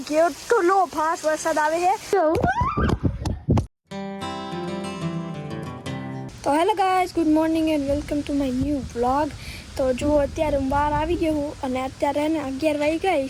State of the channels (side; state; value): both; identical; correlation 1.00